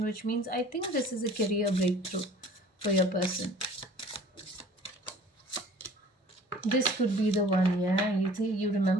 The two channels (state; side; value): normal; both; correlation 0.49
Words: which means I think this is a career breakthrough for your person. This could be the one, yeah. You